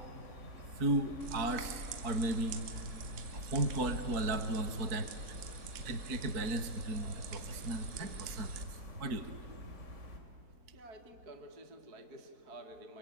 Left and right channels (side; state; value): left; late; 4.5 ms